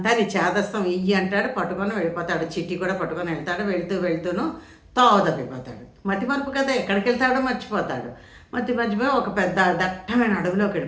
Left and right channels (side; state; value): both; identical; correlation 1.00